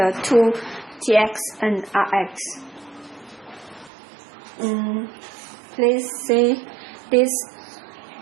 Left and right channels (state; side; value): drops out; left; at 3.9 s